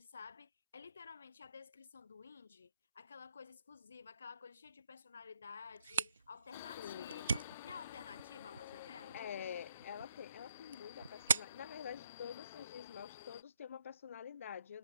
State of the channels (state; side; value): inverted; both; correlation -0.74